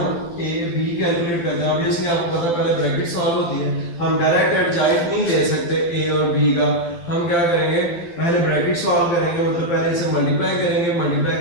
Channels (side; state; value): right; late; 12 ms